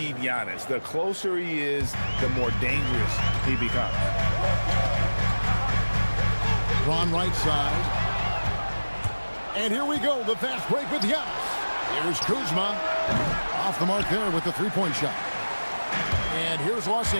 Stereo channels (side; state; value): both; inverted; correlation -1.00